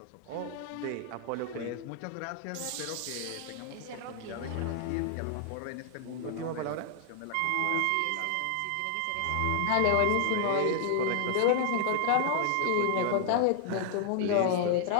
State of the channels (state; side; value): different; both; correlation 0.00